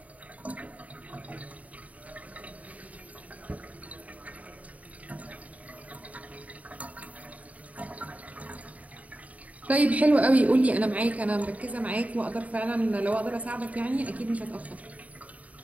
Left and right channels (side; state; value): left; late; 0.070 ms